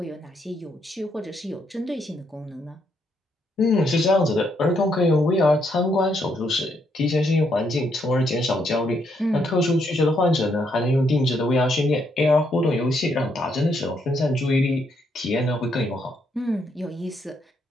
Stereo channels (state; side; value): normal; both; correlation 0.75